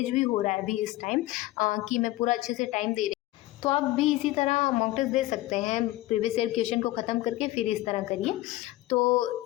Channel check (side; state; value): right; quieter; 17.2 dB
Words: भी हो रहा है अभी इस टाइम, कि मैं पूरा अच्छे से टाइम दे रही हूँ। तो आप भी इसी तरह मॉक टेस्ट दे सकते हैं, प्रीवियस ईयर क्वेश्चन को ख़त्म करके फिर इस तरह करिए। तो